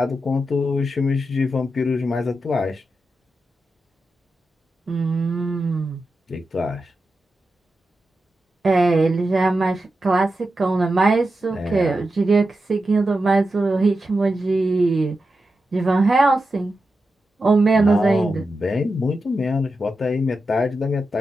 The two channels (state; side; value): normal; both; correlation 0.90